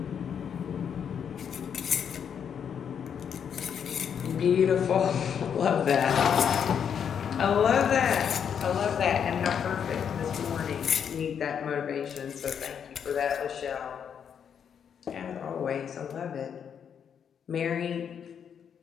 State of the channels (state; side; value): quieter; right; 7.8 dB